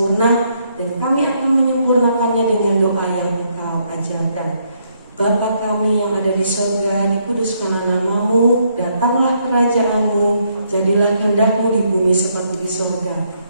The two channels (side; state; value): both; inverted; correlation -0.73